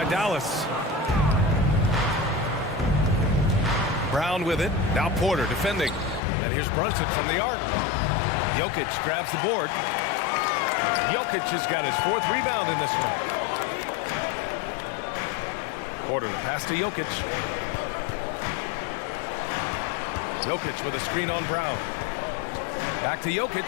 Dallas. Brown with it. Now Porter defending. And here's Brunson from the arc. Jokic grabs the board. Jokic has got his 4th rebound in this one. Porter the pass to Jokic. Jokic with a screen on Brown. Back to Jokic.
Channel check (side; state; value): right; drops out; at 6.2 s